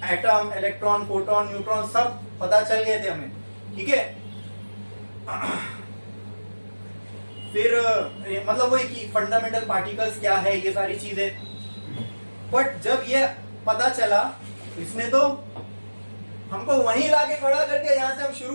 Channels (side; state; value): both; inverted; correlation -1.00